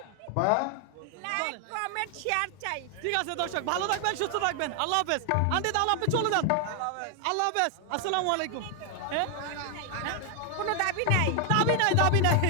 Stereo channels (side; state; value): both; different; correlation 0.00